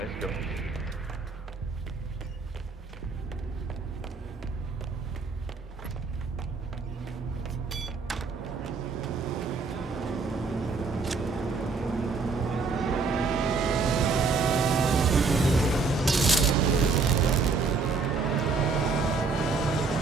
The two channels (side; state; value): left; quieter; 4.4 dB